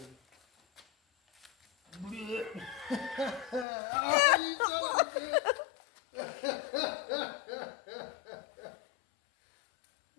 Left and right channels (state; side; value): drops out; right; at 3.7 s